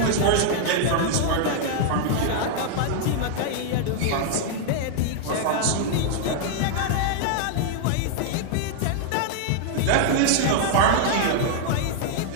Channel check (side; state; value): both; different; correlation -0.01